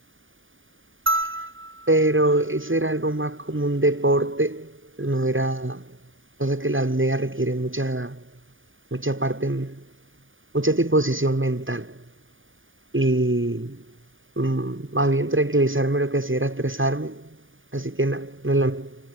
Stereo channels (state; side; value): late; left; 0.57 ms